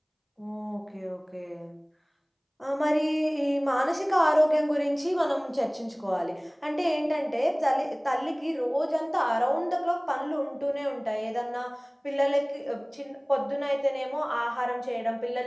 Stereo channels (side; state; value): both; identical; correlation 1.00